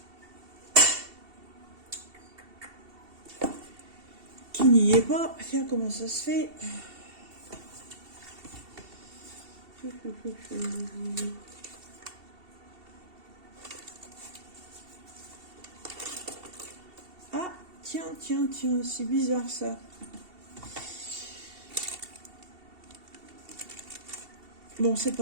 Qui n'y est pas. Tiens, comment ça se fait? Ah, tiens, c'est bizarre ça. Bon, c'est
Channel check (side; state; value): left; late; 2.7 ms